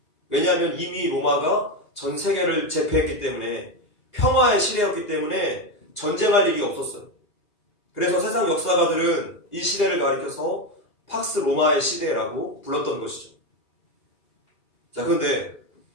왜냐하면 이미 로마가 전 세계를 제패했기 때문에 평화의 시대였기 때문에 전쟁할 일이 없었어요. 그래서 세상 역사가들은 이 시대를 가리켜서 팍스 로마의 시대라고 불렀던 것이죠. 자, 그런데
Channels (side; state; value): right; late; 2.5 ms